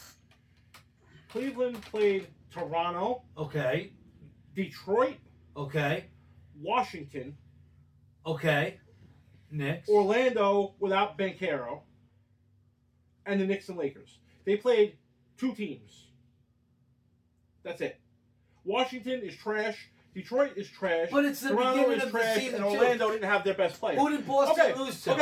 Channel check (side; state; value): both; identical; correlation 1.00